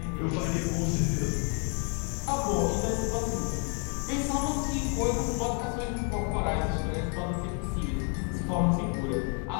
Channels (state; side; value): quieter; right; 39.5 dB